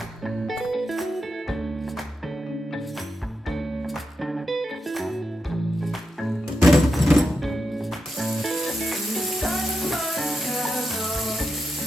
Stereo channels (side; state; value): both; normal; correlation 0.86